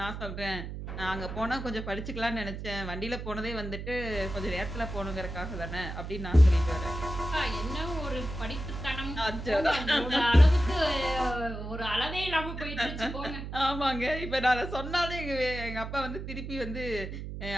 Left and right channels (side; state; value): right; noise; hum, 7 dB below the sound